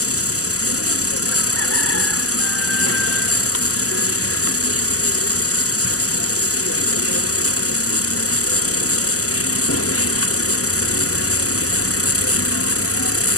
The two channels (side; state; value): right; late; 0.66 ms